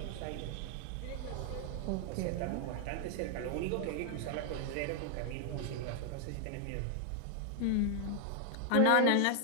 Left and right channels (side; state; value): both; different; correlation 0.00